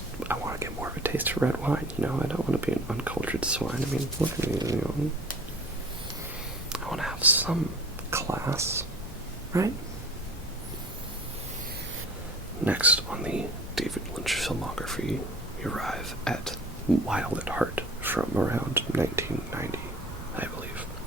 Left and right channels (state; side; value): normal; both; correlation 0.44